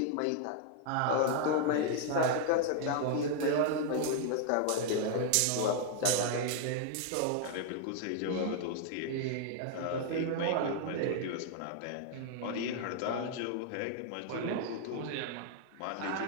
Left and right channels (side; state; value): both; different; correlation 0.00